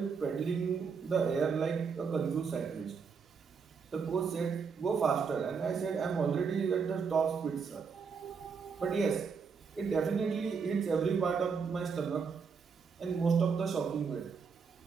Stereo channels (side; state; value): left; quieter; 5.7 dB